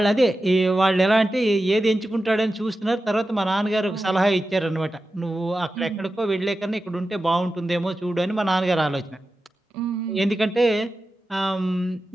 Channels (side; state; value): both; normal; correlation 0.92